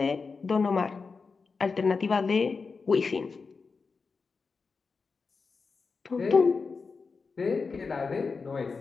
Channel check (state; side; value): quieter; right; 4.7 dB